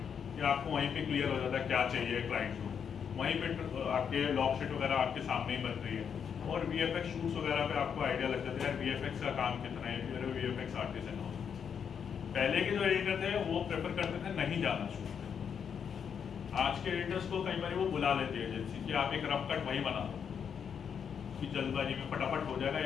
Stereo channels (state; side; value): quieter; right; 7.3 dB